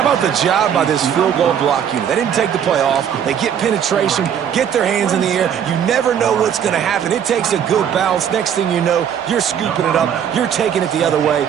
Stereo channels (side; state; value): left; quieter; 8.7 dB